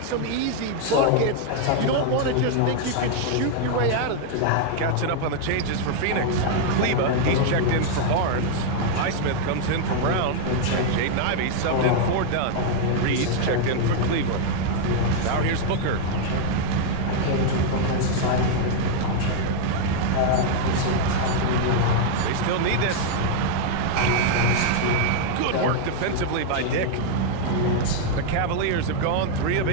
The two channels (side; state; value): both; different; correlation 0.00